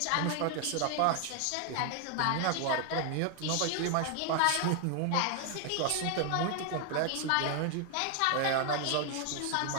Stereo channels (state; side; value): different; both; correlation 0.00